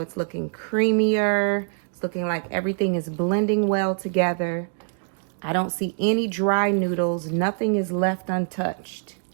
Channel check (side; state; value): left; silent; 62 dB below the other